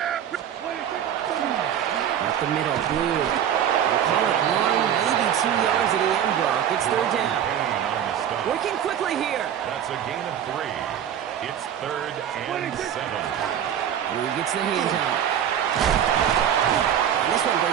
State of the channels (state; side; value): quieter; left; 9.6 dB